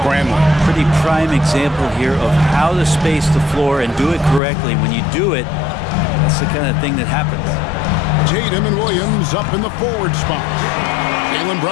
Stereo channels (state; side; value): drops out; right; at 4.4 s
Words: Pretty prime example here of how to space the floor and do it correctly. When you do it, that's the kind of thing that happens. Tatum and Williams up in the forward spot. Jaylen